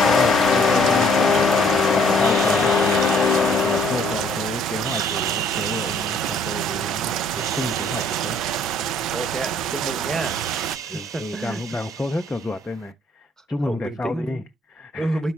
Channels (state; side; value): normal; both; correlation 0.61